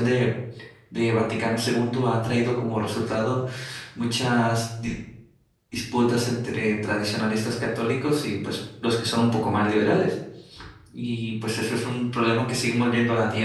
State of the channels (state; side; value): identical; both; correlation 1.00